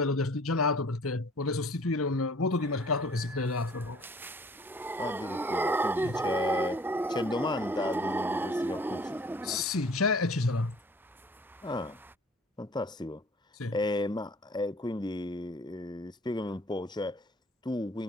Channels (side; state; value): both; normal; correlation 0.52